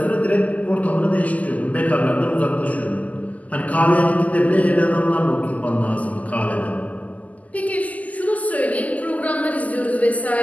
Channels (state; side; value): late; right; 0.075 ms